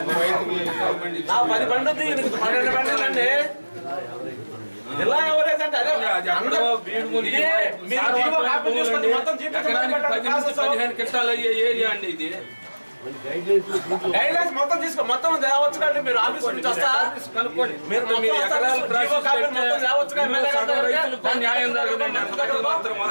బండి 12 బండి ఇలా ఎవరైతే అంటే అదే గైడ్లైన్స్ మొత్తం తీసుకో, మొత్తం తేవచ్చు కంటే మీరు ఆఫీస్ నుంచి వస్తా న్యాయం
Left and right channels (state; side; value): inverted; both; correlation -1.00